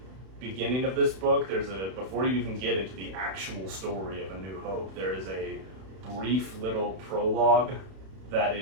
beginning of this book, before you even get into the actual story of A New Hope, there is a brief little prologue that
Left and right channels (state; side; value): late; left; 31 ms